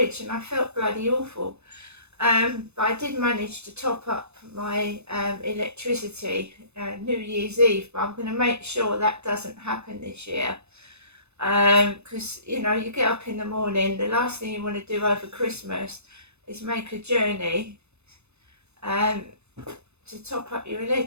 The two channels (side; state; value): left; late; 0.81 ms